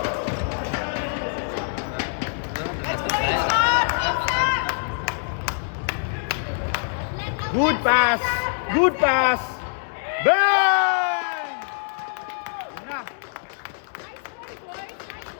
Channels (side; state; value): right; silent; digital silence